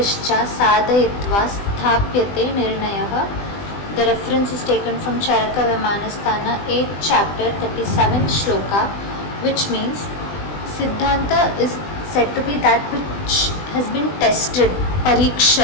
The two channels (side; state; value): right; late; 20 ms